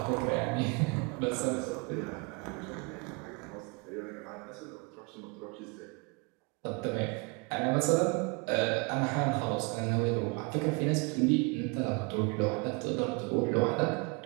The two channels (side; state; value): left; quieter; 31.0 dB